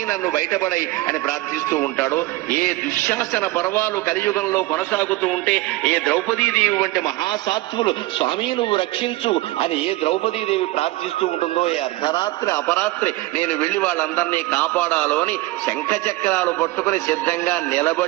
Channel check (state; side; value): quieter; left; 19.3 dB